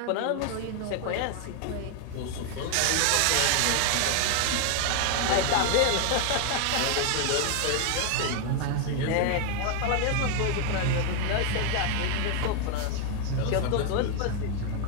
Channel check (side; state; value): both; different; correlation 0.00